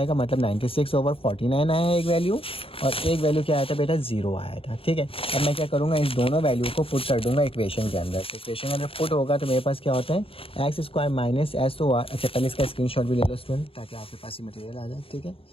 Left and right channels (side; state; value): right; late; 0.27 ms